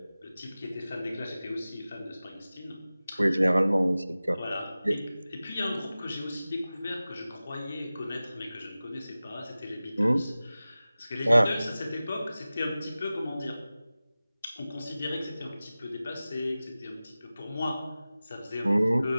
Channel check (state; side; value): inverted; both; correlation -0.97